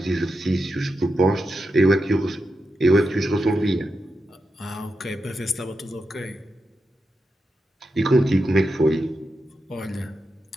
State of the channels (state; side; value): normal; both; correlation 0.88